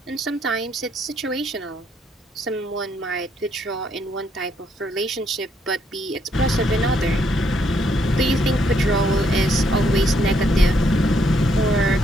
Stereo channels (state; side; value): normal; both; correlation 0.73